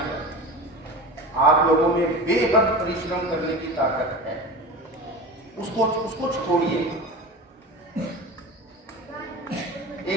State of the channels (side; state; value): both; normal; correlation 0.31